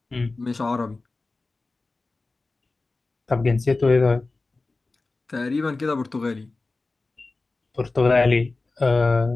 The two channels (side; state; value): right; quieter; 3.5 dB